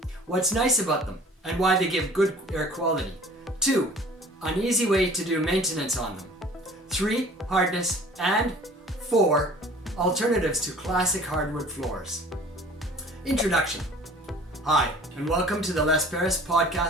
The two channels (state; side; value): normal; both; correlation 0.48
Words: What's nice about them and why they give good air quality. 2. An easy way to do maintenance on them. 3. Hardness. And 4. Alternatives to classic hardwood floors. Introduction. Hi, and welcome to the Les Paris